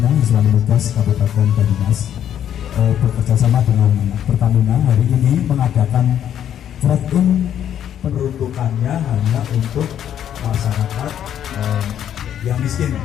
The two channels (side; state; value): right; quieter; 10.0 dB